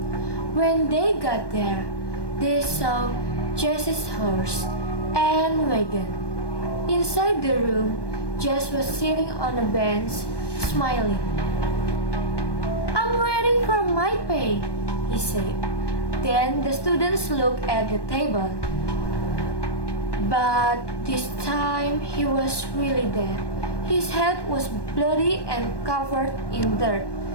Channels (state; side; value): late; right; 1.2 ms